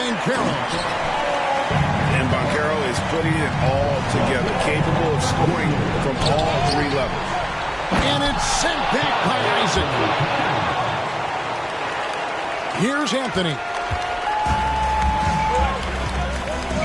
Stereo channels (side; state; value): both; identical; correlation 1.00